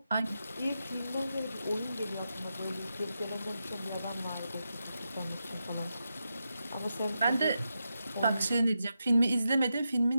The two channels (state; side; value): inverted; both; correlation -0.87